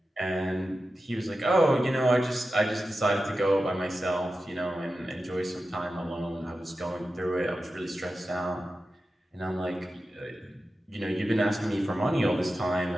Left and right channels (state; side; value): normal; both; correlation 0.92